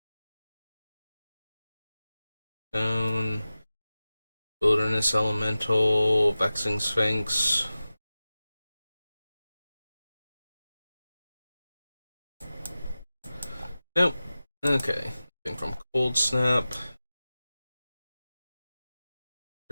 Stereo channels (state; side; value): inverted; both; correlation -0.95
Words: Stone, Wilderness Elemental, Vexing Sphinx. Nope. Okay. Thing from Cold Snap.